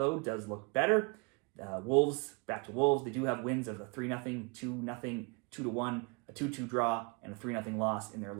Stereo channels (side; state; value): left; quieter; 32.4 dB